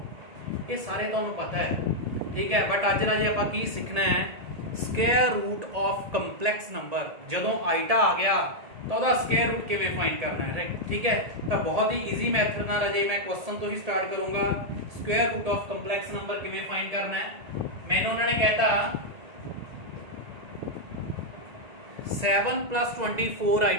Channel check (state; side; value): late; left; 1.8 ms